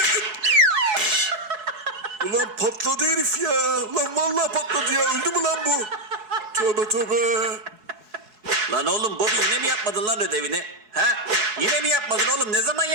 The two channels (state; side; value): late; left; 4.7 ms